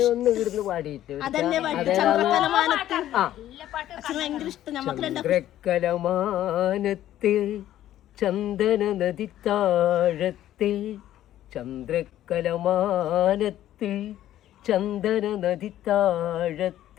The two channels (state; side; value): quieter; right; 12.8 dB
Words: ഇവിടുന്ന് പാടിയിട്ട് അതന്നെ പാട്ട് ചന്ദ്രക്കലമാനത്ത്. അച്ഛന് ഭയങ്കര ഇഷ്ടം. നമുക്ക് ചന്ദ്രക്കലമാനത്തെ ചന്ദന നദി താഴത്തെ ചന്ദ്രക്കലമാനത്തെ ചന്ദന നദി